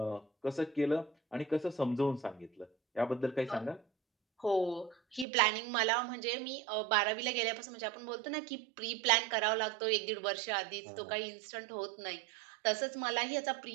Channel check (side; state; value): left; drops out; at 5.2 s